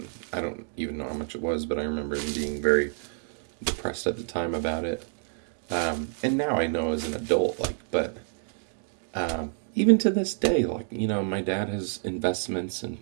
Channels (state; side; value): silent; left; 59 dB below the other